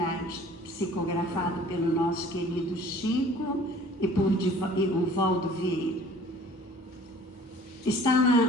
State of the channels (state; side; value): normal; both; correlation 0.50